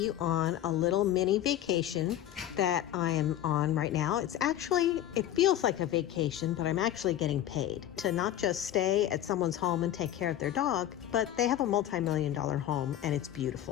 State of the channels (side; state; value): right; quieter; 12.3 dB